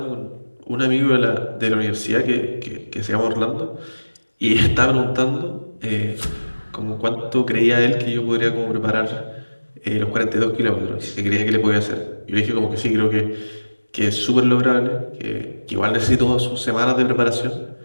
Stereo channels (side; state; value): both; inverted; correlation -1.00